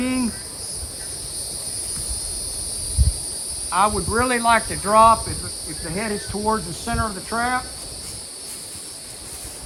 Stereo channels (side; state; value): both; identical; correlation 1.00